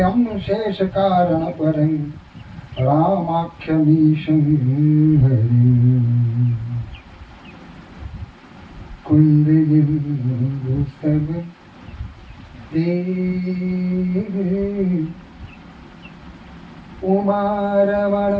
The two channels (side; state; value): both; identical; correlation 1.00